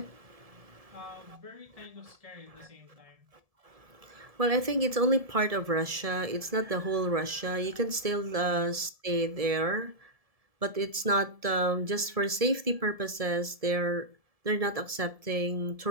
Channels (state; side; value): late; left; 1.7 ms